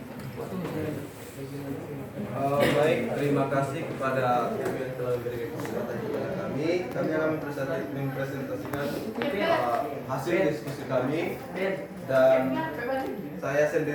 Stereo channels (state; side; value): identical; both; correlation 1.00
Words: Baik, terima kasih kepada kami yang telah memberikan kesempatan kepada kami. Kami akan mempresentasikan hasil diskusi kami, dan saya